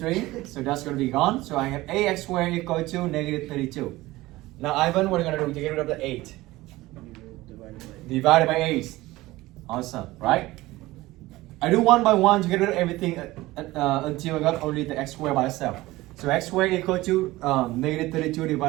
so that's going to be gone. So I have ax squared equal to negative 32. Now Ivan, what are you going to do to get rid of the 8? Divided by 8. Awesome, right? I do one by one to get rid of everything until I got only the x squared by itself. So x squared equal to negative 32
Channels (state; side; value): quieter; left; 18.6 dB